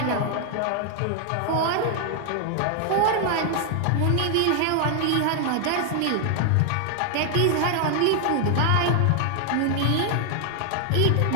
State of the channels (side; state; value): both; different; correlation 0.00